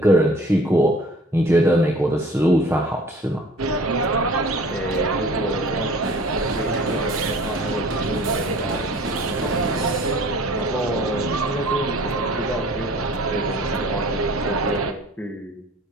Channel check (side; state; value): both; normal; correlation 0.47